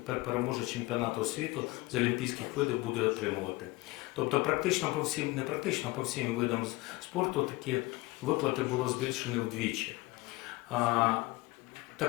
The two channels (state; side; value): quieter; right; 21.7 dB